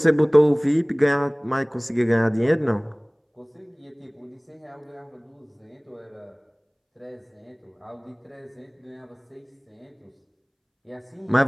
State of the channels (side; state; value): both; identical; correlation 1.00